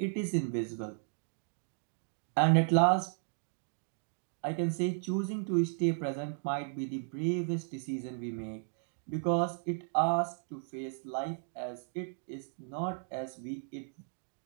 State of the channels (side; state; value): left; silent; digital silence